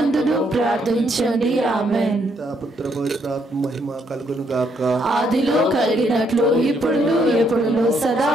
ప్రార్థించండి. ఆమేన్. పుత్ర పవిత్రాత్మ మహిమ కలుగును గాక. ఆదిలో కలిగినట్లు ఇప్పుడు ఎప్పుడు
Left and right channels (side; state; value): both; normal; correlation 0.73